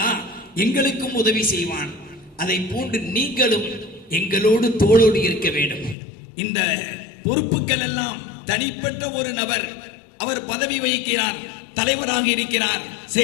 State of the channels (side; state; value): right; drops out; at 6.0 s